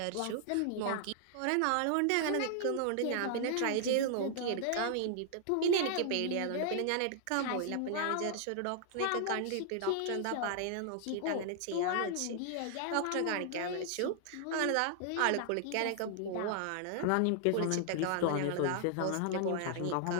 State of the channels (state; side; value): different; both; correlation -0.01